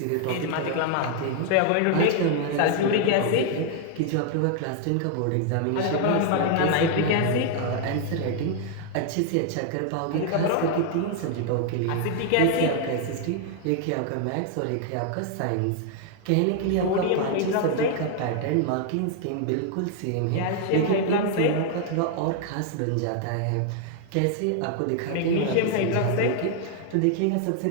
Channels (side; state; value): both; different; correlation 0.00